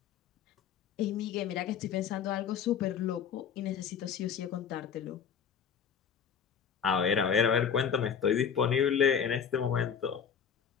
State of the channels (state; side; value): quieter; right; 7.5 dB